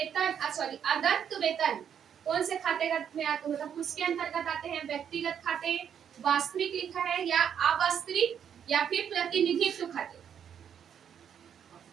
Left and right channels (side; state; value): left; quieter; 8.4 dB